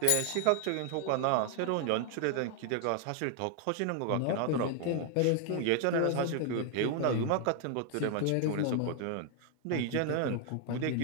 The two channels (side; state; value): both; different; correlation 0.00